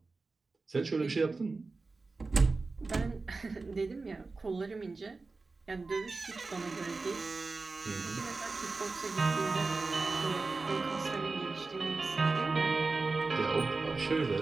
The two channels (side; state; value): left; quieter; 3.8 dB